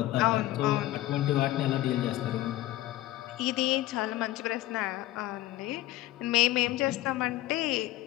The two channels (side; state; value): right; quieter; 16.1 dB